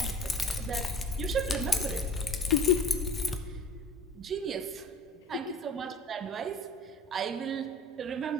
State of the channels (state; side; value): normal; both; correlation 0.42